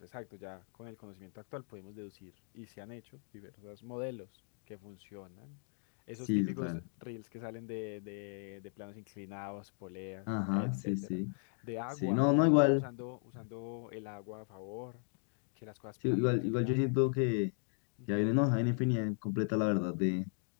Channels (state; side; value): silent; right; 53 dB below the other